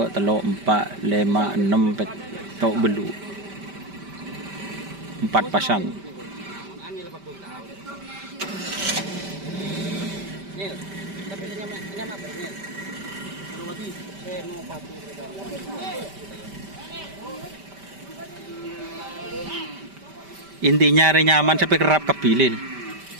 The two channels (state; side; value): late; left; 5.1 ms